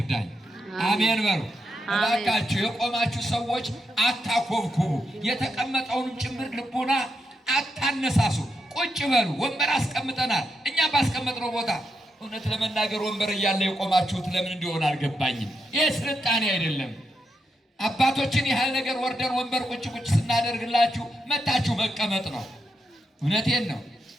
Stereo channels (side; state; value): both; normal; correlation 0.83